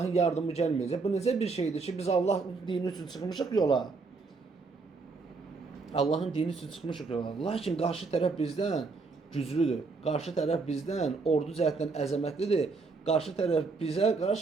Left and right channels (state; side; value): quieter; left; 4.2 dB